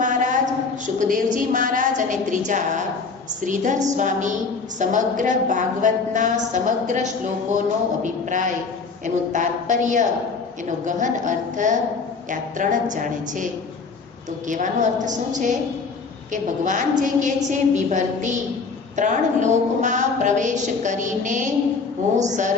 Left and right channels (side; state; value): right; quieter; 4.7 dB